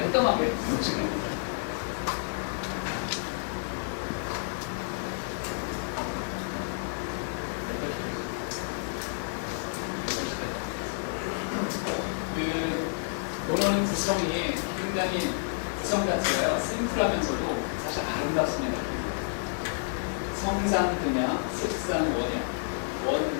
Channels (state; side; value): silent; right; digital silence